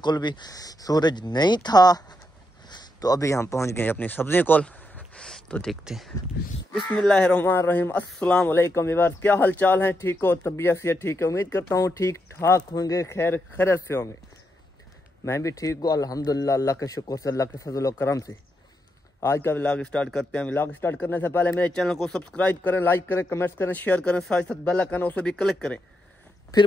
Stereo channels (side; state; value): both; normal; correlation 0.82